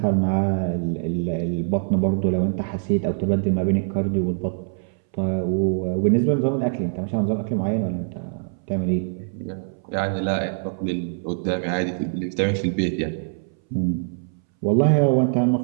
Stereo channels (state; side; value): silent; left; 62 dB below the other